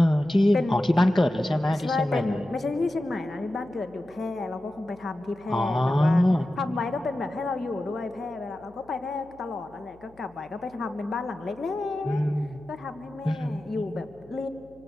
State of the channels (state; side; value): noise; left; hum, 28 dB below the sound